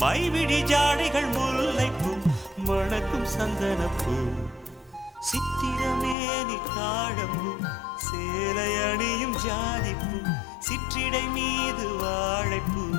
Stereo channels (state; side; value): drops out; right; at 6.2 s